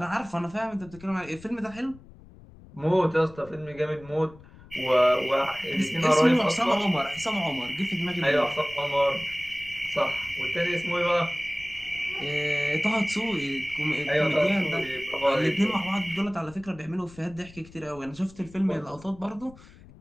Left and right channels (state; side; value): noise; left; rumble, 21 dB below the sound